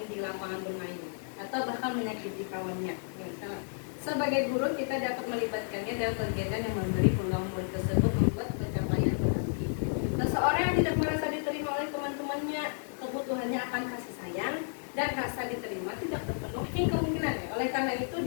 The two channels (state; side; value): silent; right; digital silence